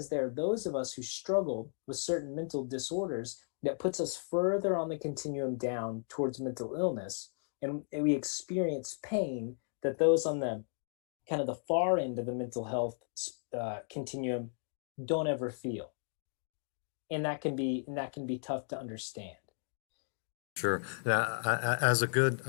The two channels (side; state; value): right; silent; digital silence